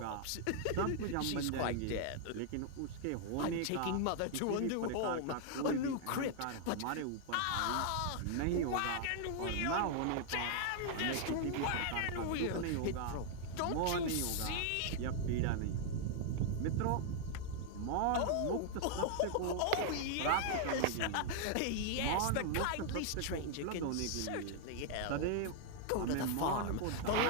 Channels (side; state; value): both; different; correlation 0.00